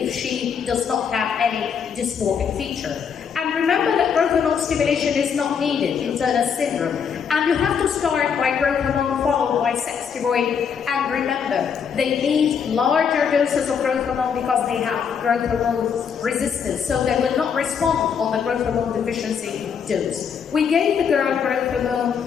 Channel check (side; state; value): right; quieter; 7.0 dB